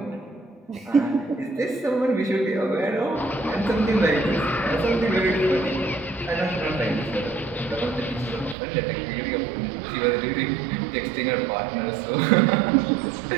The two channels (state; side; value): drops out; left; at 8.6 s